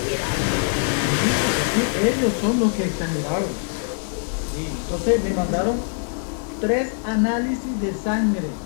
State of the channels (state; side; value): silent; right; 60 dB below the other